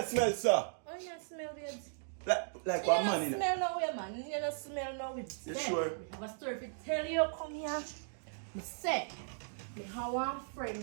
smell, sir? How you not smell, babes? Like one man, You don't smell no way, man. You don't smell no way. You sure? I have a story to tell you. Come here. Me say, me have one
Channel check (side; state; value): left; silent; digital silence